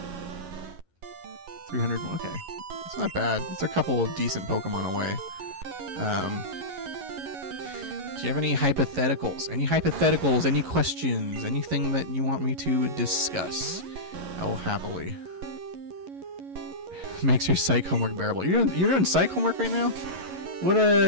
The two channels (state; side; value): late; left; 11 ms